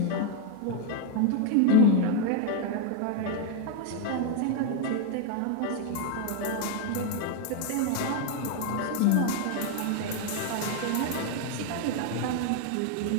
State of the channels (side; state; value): both; different; correlation 0.01